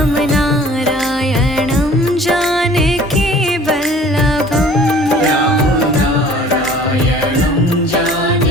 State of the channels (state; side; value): normal; both; correlation 0.50